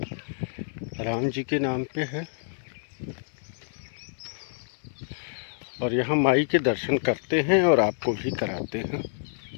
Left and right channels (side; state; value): right; silent; 60 dB below the other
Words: राम जी के नाम पे है। और यहाँ माई के दर्शन करते हैं और आपको भी कराते हैं।